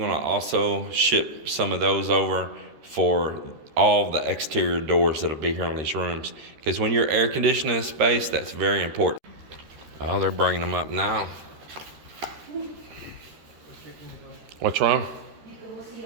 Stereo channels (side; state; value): left; late; 13 ms